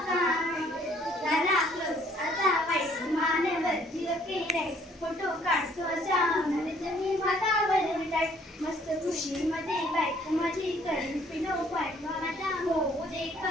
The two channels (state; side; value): normal; both; correlation 0.62